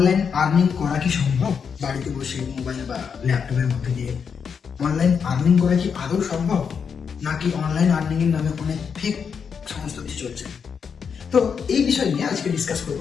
আর্নিং করা কি সম্ভব? বাড়িতে বসে মোবাইল বা ল্যাপটপের মধ্যে দিয়ে অনলাইন আর্নিং করা কি আদৌ সম্ভব, নাকি অনলাইন আর্নিং এর নামে অনেক ফেক সমস্ত কিছু চলছে? তো এই বিষয় নিয়ে আজকে ডিসকাস করব।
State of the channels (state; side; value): quieter; right; 6.5 dB